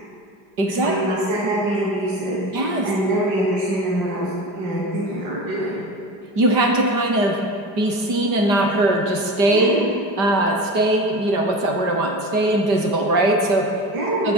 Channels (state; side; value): late; left; 5.1 ms